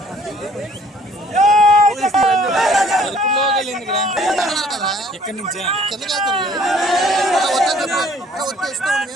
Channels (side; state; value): both; normal; correlation 0.57